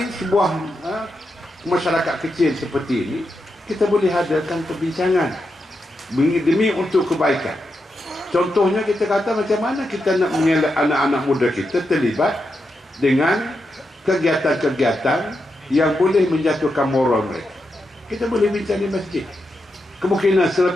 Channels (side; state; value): both; normal; correlation 0.86